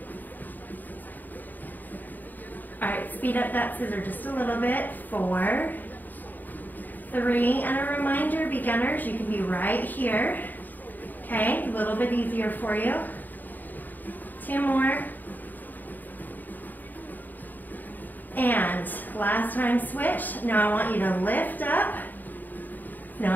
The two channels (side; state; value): right; late; 0.087 ms